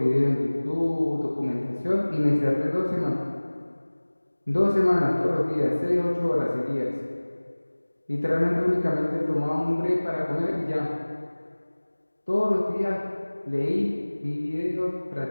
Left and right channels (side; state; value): both; inverted; correlation -1.00